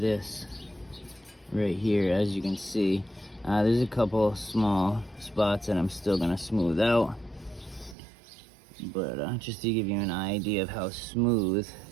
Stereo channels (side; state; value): left; drops out; at 8.0 s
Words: right here. As you can see, there's a couple small spots that I'm still gonna smooth out, but just to give you an idea of how smooth